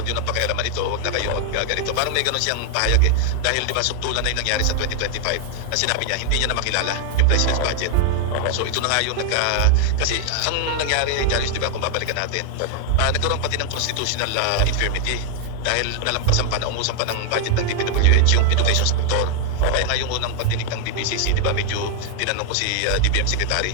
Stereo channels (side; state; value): both; different; correlation 0.00